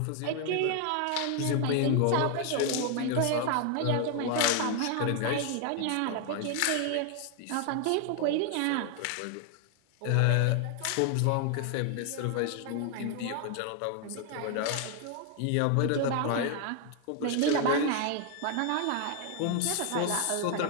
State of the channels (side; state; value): both; different; correlation 0.00